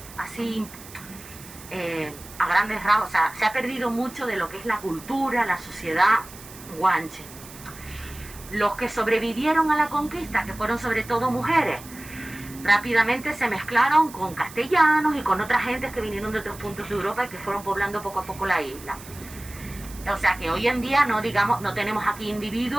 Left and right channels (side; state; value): right; noise; hiss, 17 dB below the sound